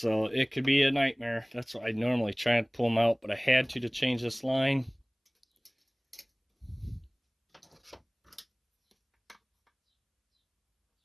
it could be a nightmare. That's why I normally try and pull them out, but I had to change this line.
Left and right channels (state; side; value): identical; both; correlation 1.00